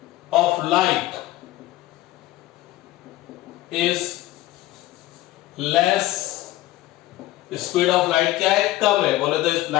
of light is less, speed of light क्या है, कम है, बोले तो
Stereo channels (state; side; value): quieter; right; 16.2 dB